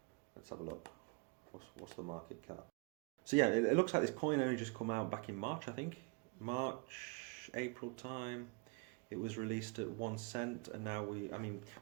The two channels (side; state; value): left; quieter; 31.4 dB